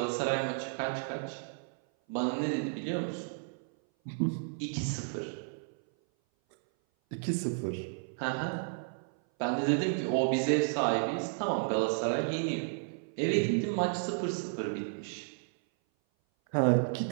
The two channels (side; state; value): left; silent; 56 dB below the other